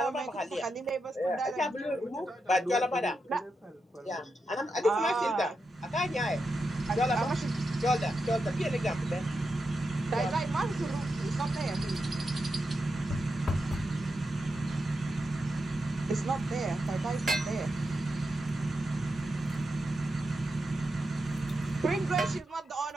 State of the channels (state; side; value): normal; both; correlation 0.87